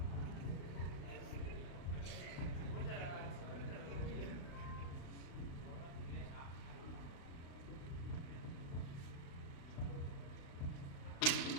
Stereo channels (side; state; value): right; late; 36 ms